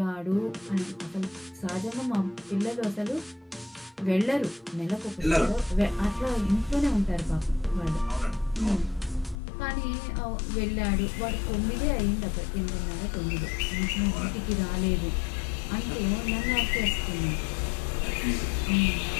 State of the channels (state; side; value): drops out; right; at 9.3 s